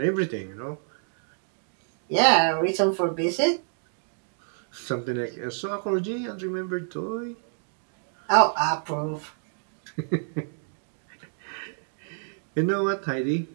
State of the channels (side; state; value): left; silent; digital silence